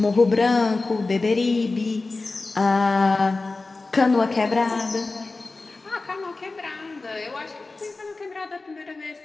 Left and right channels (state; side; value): quieter; right; 3.5 dB